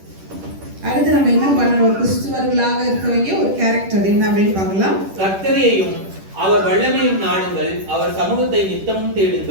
அடுத்து நம்ம என்ன பண்ணணும்? ஒரு கிறிஸ்துவர்களாக இருக்க வேண்டிய ஒரு கேரக்டர் என்ன அப்படின்னு பார்க்கலாம். கர்த்தரையும் அவர் வல்லமையும் நாடுங்கள், அவர் சமூகத்தை நித்தமும்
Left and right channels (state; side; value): late; left; 10 ms